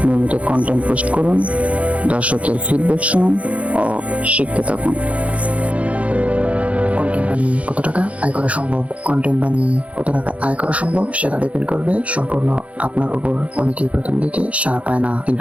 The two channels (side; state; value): left; late; 0.065 ms